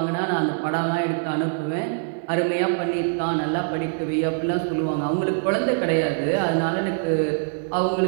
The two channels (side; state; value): left; silent; digital silence